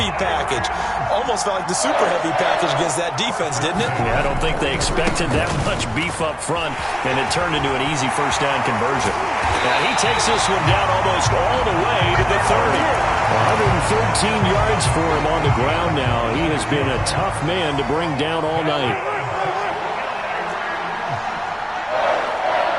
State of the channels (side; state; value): both; identical; correlation 1.00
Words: package. Almost felt like the super heavy package against that defense, didn't it? Yeah, I don't think they expected that much beef up front, and it turned into an easy first down conversion. Now he takes this one down almost all the way to the 30. 113 yards for him on the ground now. He has been a tough man to bring down all night.